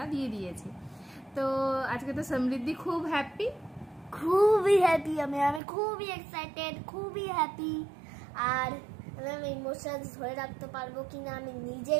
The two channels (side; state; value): left; drops out; at 5.6 s